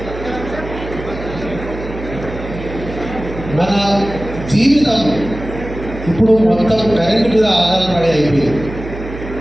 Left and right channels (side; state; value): right; noise; hum, 10 dB below the sound